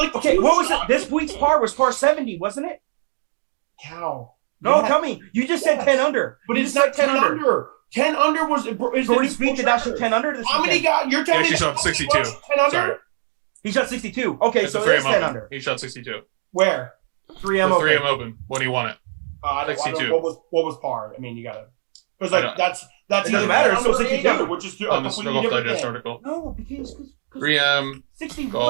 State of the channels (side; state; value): left; silent; digital silence